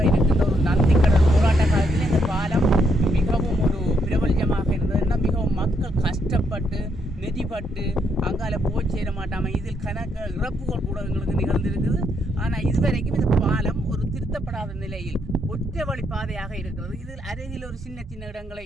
இருக்கின்ற ஒரு நந்திக்கடல் போராட்ட காலத்தில் இந்த பாலம் மிகவும் ஒரு பிரபல்யமாக இருந்ததுன்னா மிகவும் மக்கள் கஷ்டப்பட்டு நெதிப்பட்டு அங்கால போய் சேர மாட்டாமல் இதில் கணக்கு இறப்புகள் கூட எங்களுக்கு நிகழ்ந்திருக்குது. ஆனால் இதுவரைக்கும் இந்த பாலம் ஒரு திருத்தப்படாத நிலையில் ஒற்றை வழி பாதையாக இருக்கிறது. இதில் அருகில் ஒரு சின்ன சின்ன இடங்களை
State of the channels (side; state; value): both; normal; correlation 0.76